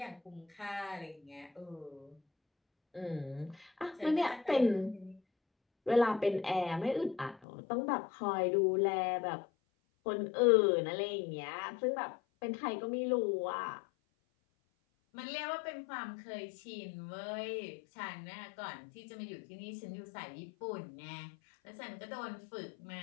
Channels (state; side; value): drops out; right; at 7.4 s